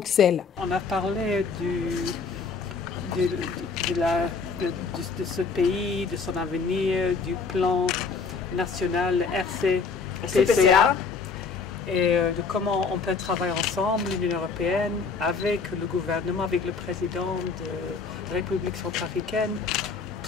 On a parlé de ce pays, de son avenir, du plan national RCPCA et de comment on peut travailler ensemble, l'Union européenne, avec le gouvernement, avec le président de la République centrafricaine,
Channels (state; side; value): quieter; right; 4.9 dB